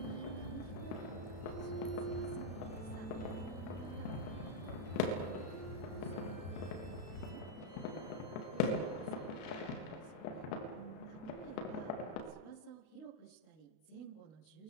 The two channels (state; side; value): late; right; 32 ms